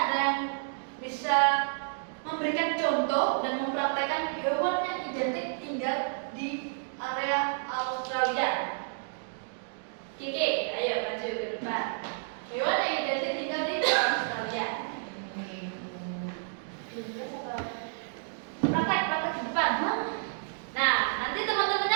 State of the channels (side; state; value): left; silent; digital silence